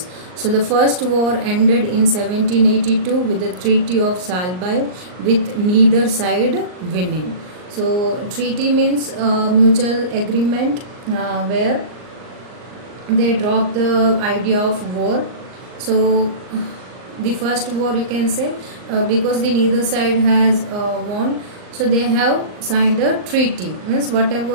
So the first war ended in 1782 with the Treaty of Salbai, with neither side winning. So treaty means mutual agreement where they dropped the idea of war. So the first war, you can say, because the neither side has won, so they have signed a treaty. Means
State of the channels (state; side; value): late; left; 39 ms